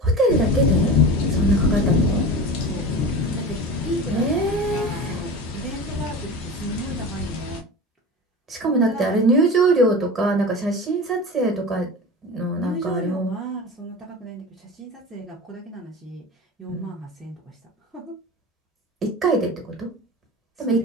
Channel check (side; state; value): both; normal; correlation 0.32